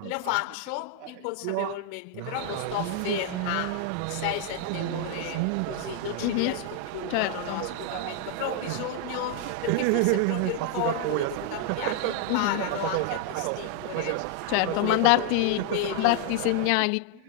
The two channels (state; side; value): different; both; correlation 0.00